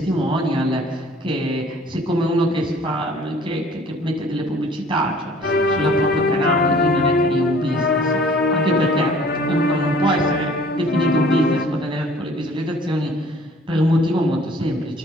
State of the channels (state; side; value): normal; both; correlation 0.53